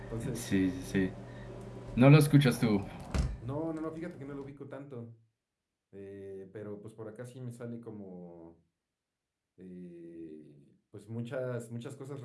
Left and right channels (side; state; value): both; identical; correlation 1.00